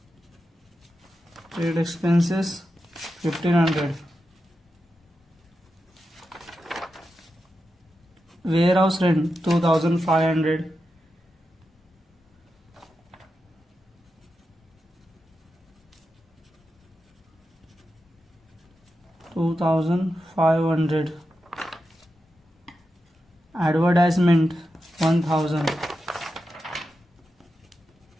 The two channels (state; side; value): normal; both; correlation 0.89